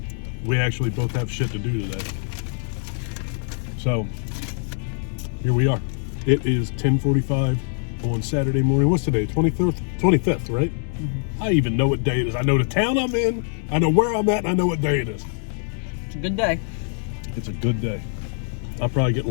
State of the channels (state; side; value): silent; right; 63 dB below the other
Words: we actually both have shit to do today. So here we are. It is 10:45 on Saturday morning. What's today? 25th, right? Mm-hmm. I even know what day it is. I know the town I'm in, I know where I'm at, and I know what day it is. It's a good day. It's a good day. I'll probably get